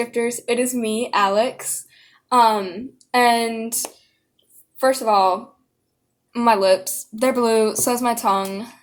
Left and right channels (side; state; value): both; identical; correlation 1.00